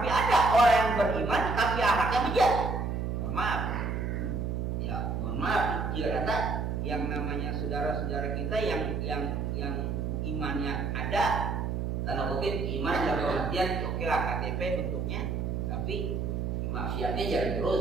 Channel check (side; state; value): right; noise; hum, 1 dB below the sound